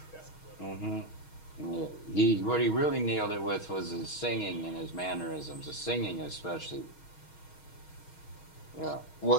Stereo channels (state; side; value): late; right; 6.3 ms